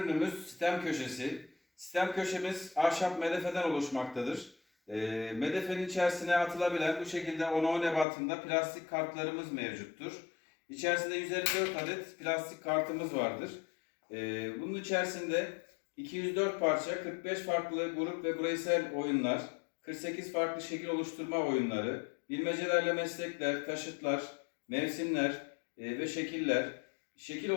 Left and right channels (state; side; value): drops out; right; at 8.1 s